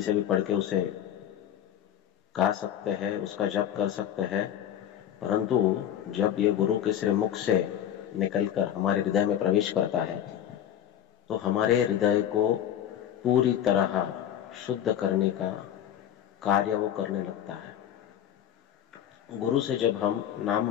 से भी पढ़ के उसे गा सकते हैं, उसका जप कर सकते हैं, परंतु जब ये गुरु के श्रीमुख से निकलकर हमारे हृदय में प्रवेश करता है तो हमारे हृदय को पूरी तरह शुद्ध करने का कार्य वो करने लगता है। गुरु से जब हम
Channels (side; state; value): right; quieter; 10.4 dB